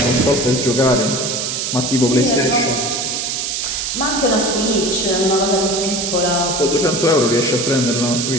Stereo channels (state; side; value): noise; right; hiss, 2 dB below the sound